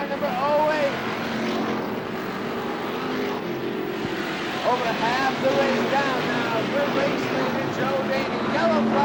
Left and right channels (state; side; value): identical; both; correlation 1.00